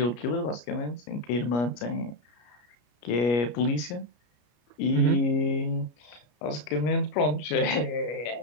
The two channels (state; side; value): late; right; 33 ms